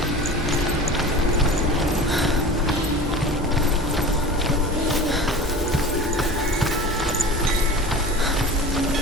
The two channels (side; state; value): both; normal; correlation 0.36